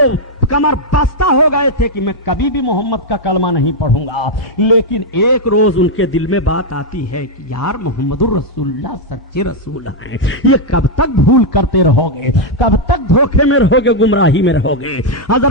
کمر بستہ ہو گئے تھے کہ میں کبھی بھی محمد کا کلمہ نہیں پڑھوں گا، لیکن ایک روز ان کے دل میں بات آتی ہے کہ یار محمد الرسول اللہ سچے رسول ہیں، یہ کب تک بھول کرتے رہو گے، کب تک دھوکے میں رہو گے، گمراہی میں رہو گے۔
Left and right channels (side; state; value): both; normal; correlation -0.01